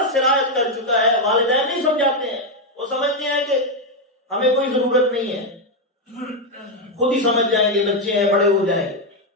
سرایت کر چکا ہے، والدین نہیں سمجھاتے ہیں، وہ سمجھتے ہیں کہ ہمیں کوئی ضرورت نہیں ہے، خود ہی سمجھ جائیں گے، بچے ہیں بڑے ہو جائیں گے،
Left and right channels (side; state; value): both; normal; correlation 0.04